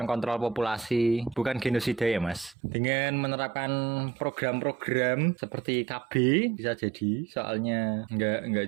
kontrol populasi, bukan genosida ya Mas. Dengan menerapkan program-program seperti KB bisa jadi. Soalnya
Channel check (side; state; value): left; drops out; at 2.6 s